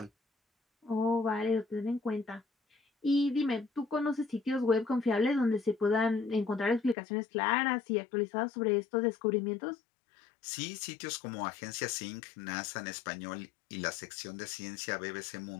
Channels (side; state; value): right; drops out; at 7.0 s